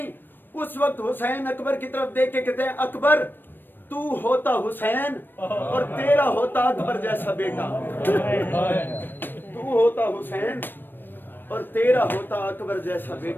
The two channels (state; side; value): late; right; 0.094 ms